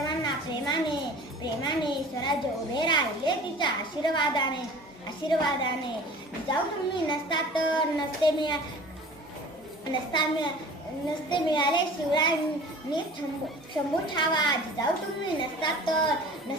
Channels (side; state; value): both; normal; correlation 0.43